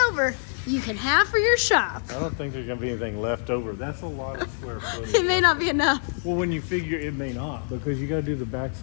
over, you can have for your shop. I don't think there's going to be anything left over. That's a lot of square footage. It may not be enough. Well, when you figure it may not, because you got to do the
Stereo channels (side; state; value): right; silent; 61 dB below the other